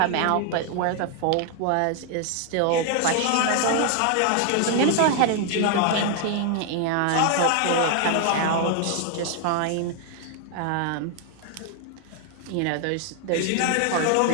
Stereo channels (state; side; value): different; both; correlation 0.00